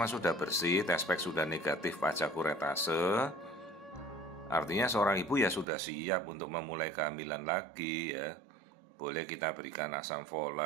sudah bersih, tes pack sudah negatif pasca kuretase, artinya seorang ibu ya sudah siap untuk memulai kehamilan lagi ya. Boleh kita berikan asam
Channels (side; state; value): left; drops out; at 5.7 s